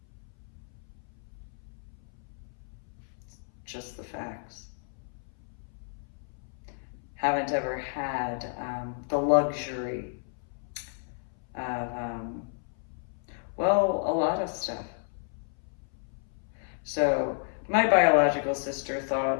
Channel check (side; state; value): right; silent; 57 dB below the other